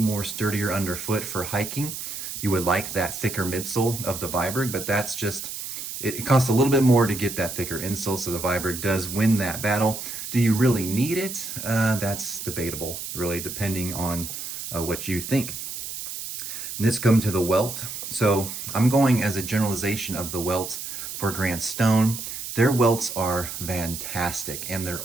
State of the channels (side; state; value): right; noise; hiss, 7 dB below the sound